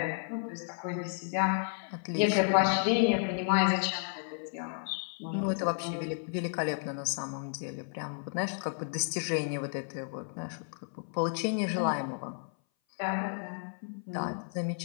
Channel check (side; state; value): right; silent; 56 dB below the other